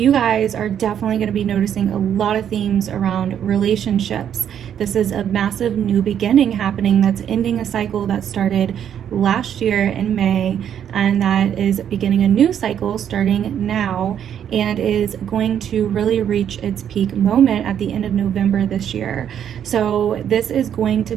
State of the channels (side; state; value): left; quieter; 9.2 dB